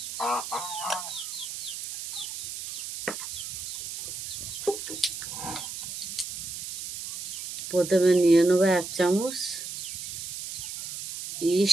প্রথমে নিয়ে নেব 1 চামচ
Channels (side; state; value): right; noise; hiss, 7 dB below the sound